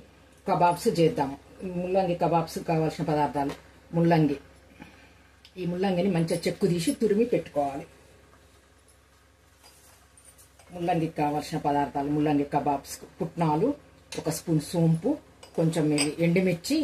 కబాబ్స్ చేద్దాం. ముల్లంగి కబాబ్స్ కావాల్సిన పదార్థాలు: ముల్లంగి. ఈ ముల్లంగిని మంచిగా చెక్కు తీసి తురిమి పెట్టుకోవాలి. ముల్లంగికి కావాల్సిన పదార్థాలు: ముల్లంగి కబాబ్స్ పుట్నాలు, 1 స్పూన్ సోంపు, కొంచెం ఎండుమిర్చి,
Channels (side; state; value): both; identical; correlation 1.00